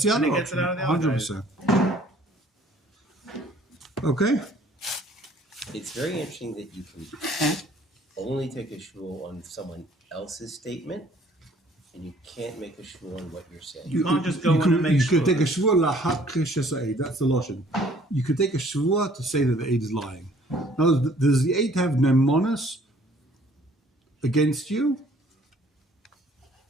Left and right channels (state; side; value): normal; both; correlation 0.58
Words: the And other he gets it option. out of the other 100%. Okay. It's very interesting that you can only take a shul on someone else's statement, and you can't make a shul on what you're saying. You can't just go in and make You sure. could take a shvua lahak shesa'ed. That's the lotion. You could take a shvua to say that the aid is lying. Now, does the aid have nemonis against you?